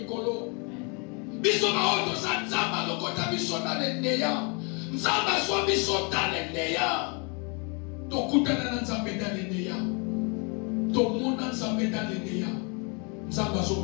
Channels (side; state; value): right; quieter; 34.2 dB